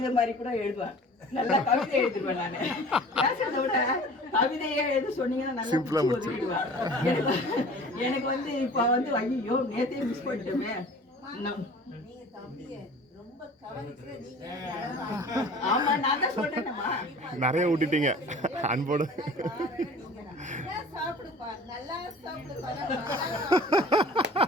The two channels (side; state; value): both; normal; correlation 0.44